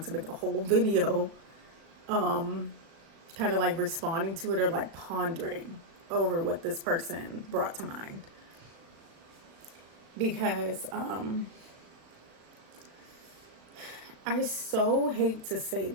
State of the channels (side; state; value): left; late; 37 ms